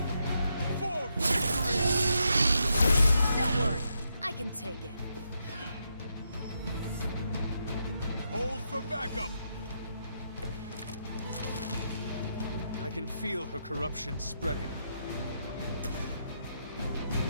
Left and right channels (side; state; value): both; inverted; correlation -0.81